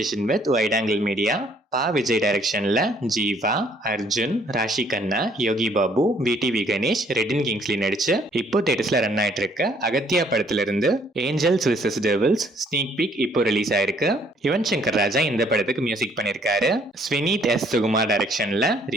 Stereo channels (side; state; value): both; normal; correlation 0.63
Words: with wide angle media Pa Vijay டைரக்ஷன்ல Jiiva, Arjun, Raashi Khanna, Yogi Babu, VTV Ganesh, Redin Kingsley நடிச்சு இப்போ தேட்டர்ஸ்ல ரன் ஆயிட்டு இருக்க அகத்தியா படத்துல இருந்து angels versus devils sneak peek இப்போ ரிலீஸ் ஆயிருக்கு. யுவன் சங்கர் ராஜா இந்த படத்துக்கு மியூசிக் பண்ணிருக்காரு. ஸ்வினீத் எஸ் சுகுமார் டைரக்ஷன்ல